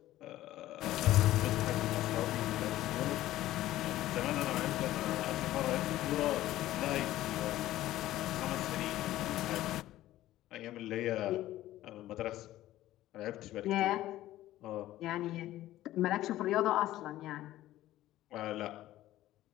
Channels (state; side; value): quieter; right; 14.8 dB